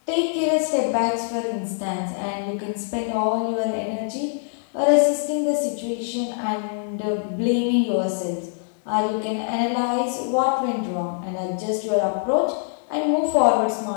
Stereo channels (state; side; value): silent; right; digital silence